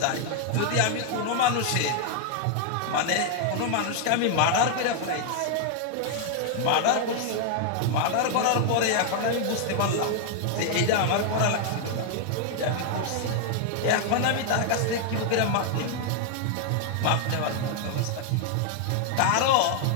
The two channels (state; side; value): different; both; correlation 0.00